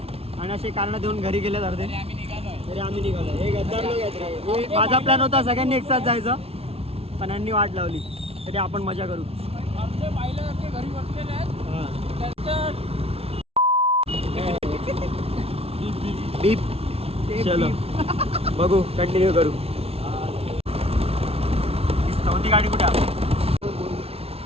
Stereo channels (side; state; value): left; late; 0.29 ms